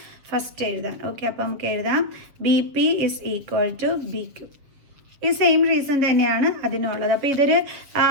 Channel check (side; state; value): left; late; 7.4 ms